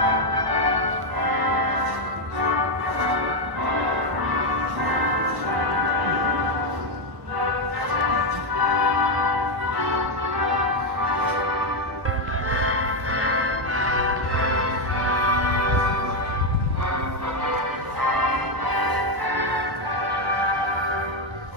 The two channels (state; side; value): late; left; 1.1 ms